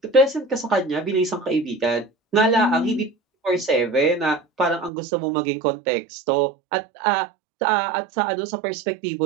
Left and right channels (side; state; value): left; drops out; at 4.9 s